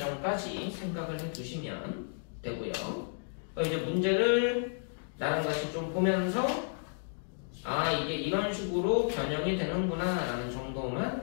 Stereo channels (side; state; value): right; silent; digital silence